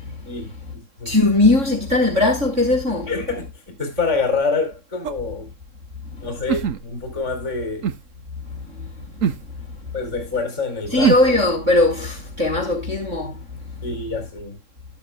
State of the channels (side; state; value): left; late; 3.6 ms